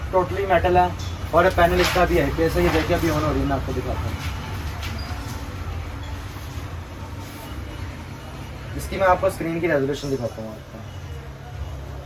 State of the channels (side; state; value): both; identical; correlation 1.00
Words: मेटल है। और पैनल इसका भी है। कैसे ये देखिए अभी ऑन हो रही है, मैं आपको दिखाता हूँ। इसकी मैं आपको स्क्रीन की रेजोल्यूशन दिखाता हूँ आपको।